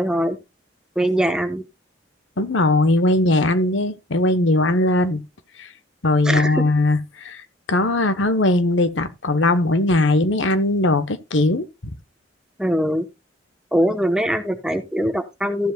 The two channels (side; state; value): both; normal; correlation 0.53